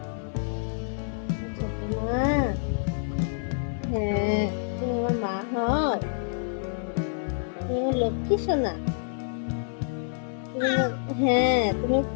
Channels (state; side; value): silent; right; digital silence